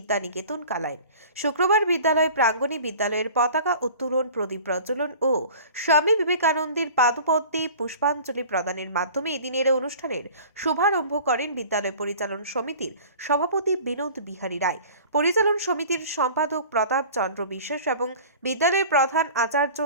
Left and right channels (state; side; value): inverted; both; correlation -0.43